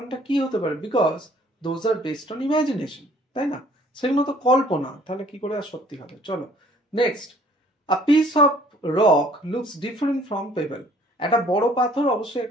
কি হতে পারে? Because those are based on imagination, তাই না? সেগুলো তো কল্পনা, তাহলে কি করে আর সত্যি হবে? চলো next, a piece of rock looks different from payable. একটা বড় পাথর অবশ্যই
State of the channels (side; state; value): both; normal; correlation 0.57